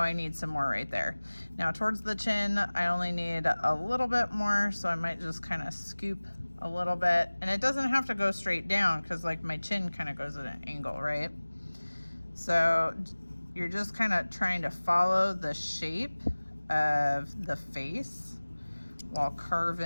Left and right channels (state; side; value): inverted; both; correlation -1.00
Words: I need some more right there. Now towards the chin, I only need a little bit more. So I might just kind of scoop a little bit, and it doesn't have to go straight down because like my chin kind of goes at an angle, right? So you're just kind of trying to follow the shape of the face while